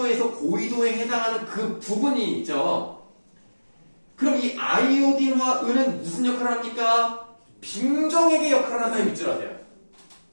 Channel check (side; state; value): both; inverted; correlation -1.00